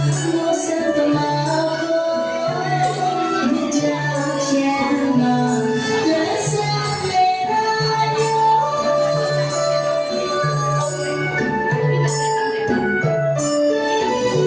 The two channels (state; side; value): identical; both; correlation 1.00